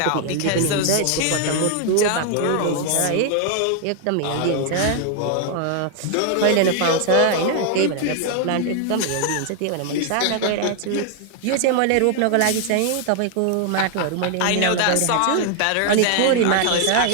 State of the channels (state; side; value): different; both; correlation 0.00